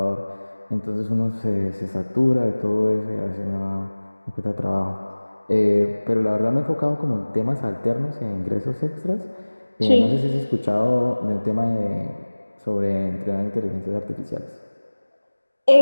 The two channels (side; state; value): both; inverted; correlation -1.00